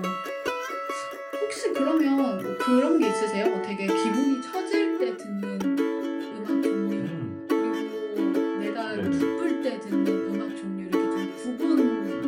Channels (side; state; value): both; identical; correlation 1.00